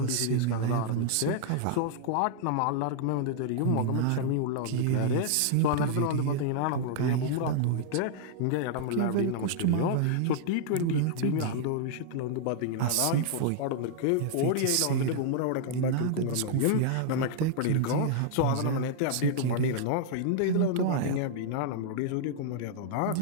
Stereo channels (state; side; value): different; both; correlation -0.01